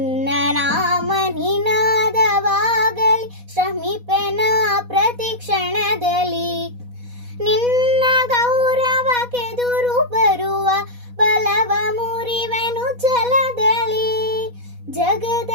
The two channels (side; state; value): left; late; 4.1 ms